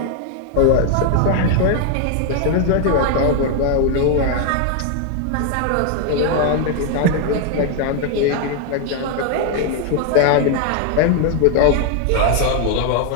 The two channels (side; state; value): both; different; correlation 0.00